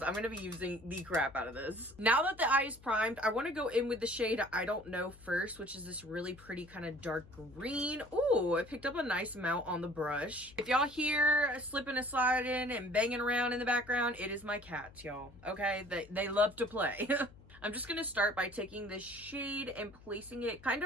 I'm going to be using the crap out of this. Now that the eye is primed, I want to go in with the shade I Don't Know first, which is this really pretty kind of dark green. Ooh, I picked up a nice amount on the brush. If y'all hear slipping and sliding and banging around in the background, it is my cats, y'all. Okay? They love to play. I'm just going to start by taking this shade and placing it kind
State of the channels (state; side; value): noise; left; hum, 22 dB below the sound